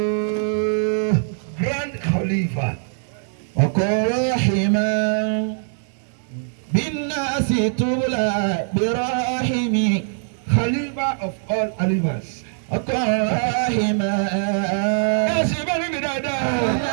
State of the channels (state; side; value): silent; left; digital silence